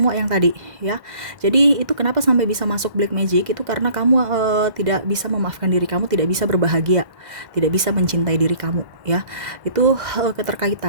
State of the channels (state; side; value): late; left; 1.5 ms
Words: yang tadi ya. Jadi itu kenapa sampai bisa masuk black magic, itu karena kamu tidak bisa memaafkan diri kamu, tidak bisa berbahagia, tidak bisa mencintai diri kamu ya. Itu